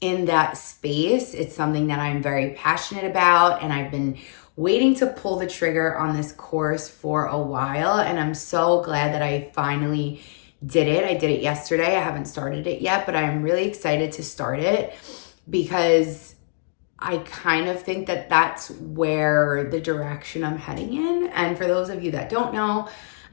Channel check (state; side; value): silent; right; digital silence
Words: in that space. It's something that I'm very passionate about, and I've been waiting to pull the trigger on this course for a while, and I'm so glad that I finally did it. I did it yesterday. I haven't started it yet, but I'm really excited to start it because I kind of think that that's where the direction I'm heading in. And for those of you that don't know,